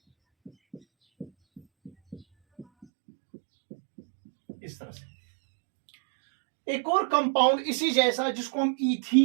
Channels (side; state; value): left; drops out; at 2.9 s